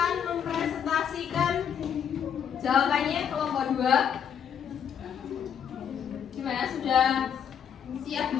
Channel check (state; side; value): quieter; right; 8.3 dB